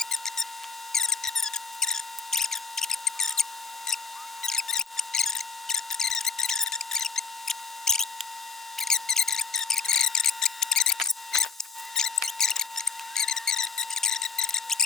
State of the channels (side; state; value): right; quieter; 5.5 dB